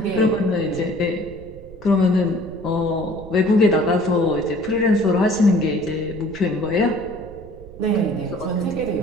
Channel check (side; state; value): right; noise; rumble, 17 dB below the sound